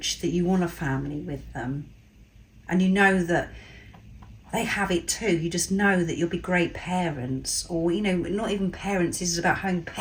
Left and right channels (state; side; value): identical; both; correlation 1.00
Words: that you want a family with them. And you know that they have it too. You just know that you'll be great parents, or, not even parents, this is about having